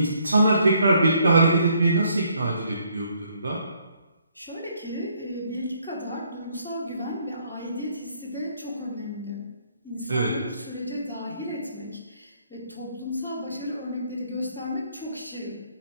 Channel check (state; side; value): inverted; both; correlation -0.68